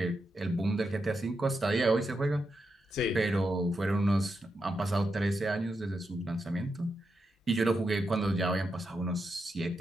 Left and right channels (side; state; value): both; normal; correlation 0.86